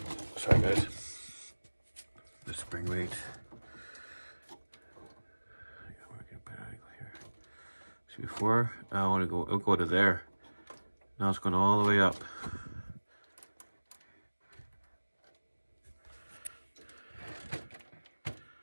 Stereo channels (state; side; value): inverted; both; correlation -1.00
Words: Sorry guys. The spring weight. I gotta work a better angle here. See, before I want to go, it'll go to there. Now it's going all the way up.